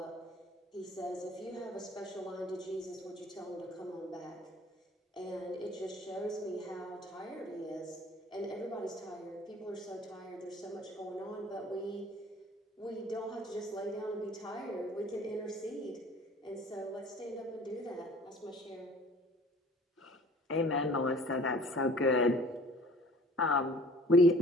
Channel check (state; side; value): normal; both; correlation 0.50